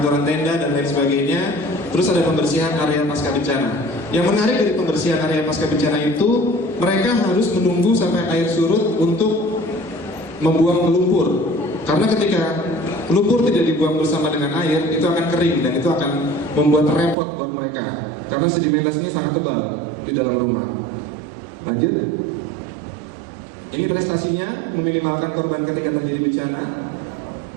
tenda dan lain sebagainya. Terus ada pembersihan area pasca bencana. Yang menarik dari pembersihan area pasca bencana itu, mereka harus menunggu sampai air surut untuk membuang lumpur. Karena ketika lumpur tidak dibuang bersama dengan air, itu akan kering dan itu akan membuat repot buat mereka. Karena sedimentasinya sangat tebal di dalam rumah. Lanjut. Ini prestasinya meminimalkan korban ketika terjadi bencana.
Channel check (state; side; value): drops out; left; at 17.2 s